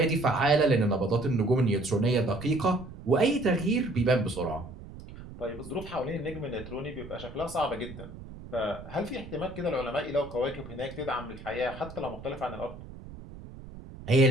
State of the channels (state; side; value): noise; right; rumble, 14 dB below the sound